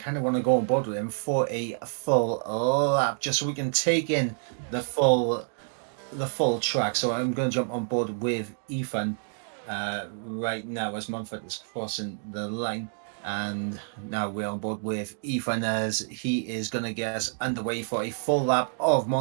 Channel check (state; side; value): silent; left; digital silence